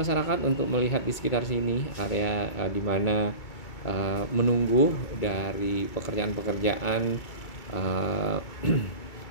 untuk melihat di sekitar sini area di mana menunggu dari pekerjaan-pekerjaan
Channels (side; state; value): right; late; 2.3 ms